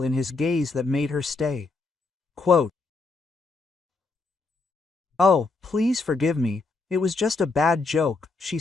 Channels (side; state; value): right; quieter; 3.8 dB